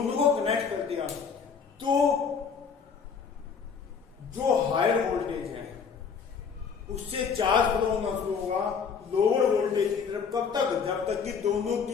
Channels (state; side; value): quieter; right; 6.2 dB